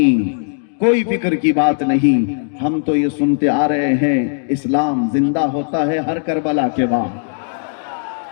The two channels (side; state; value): right; silent; 66 dB below the other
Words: کوئی فکر کی بات نہیں۔ ہم تو یہ سنتے آ رہے ہیں اسلام زندہ ہوتا ہے ہر کربلا کے بعد۔